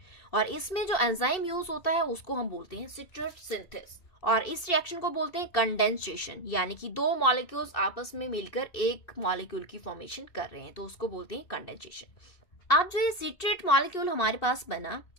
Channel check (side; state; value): right; late; 2.7 ms